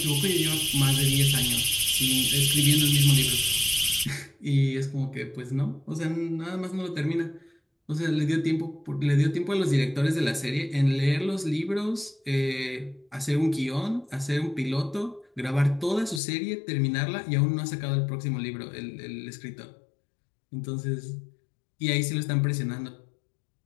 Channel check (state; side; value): drops out; right; at 16.2 s